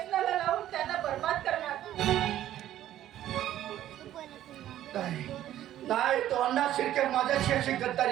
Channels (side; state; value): left; quieter; 12.6 dB